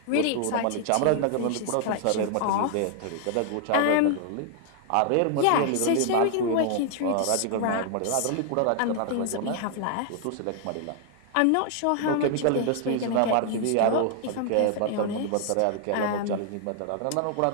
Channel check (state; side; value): different; both; correlation 0.00